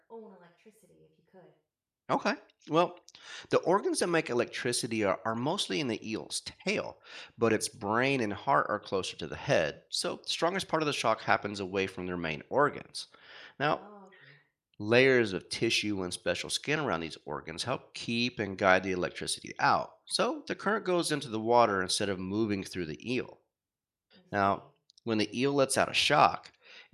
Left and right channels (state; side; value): identical; both; correlation 1.00